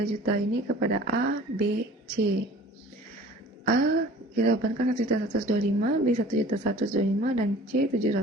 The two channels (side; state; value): both; normal; correlation 0.46